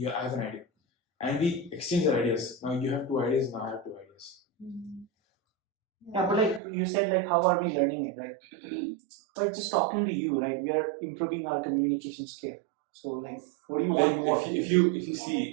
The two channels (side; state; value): left; drops out; at 6.6 s